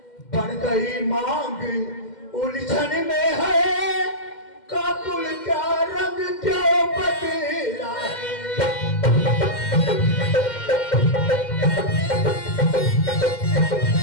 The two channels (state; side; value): late; right; 2.1 ms